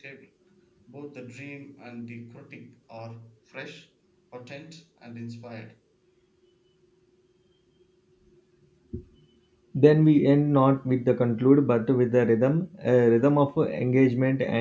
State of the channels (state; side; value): identical; both; correlation 1.00